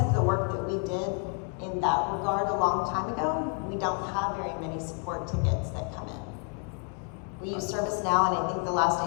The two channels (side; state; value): right; quieter; 37.7 dB